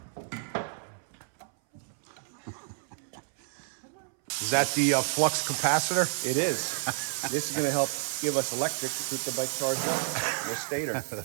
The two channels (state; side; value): silent; left; 58 dB below the other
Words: Is that the flux capacitor? It is. This is going to help give us electric to keep the bike charged up. The stator.